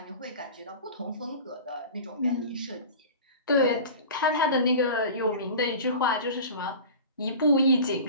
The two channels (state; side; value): inverted; both; correlation -0.36